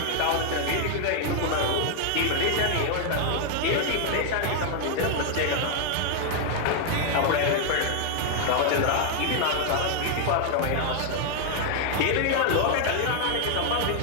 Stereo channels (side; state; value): both; different; correlation 0.00